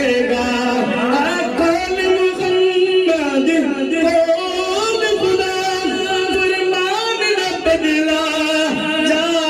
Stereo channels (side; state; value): both; identical; correlation 1.00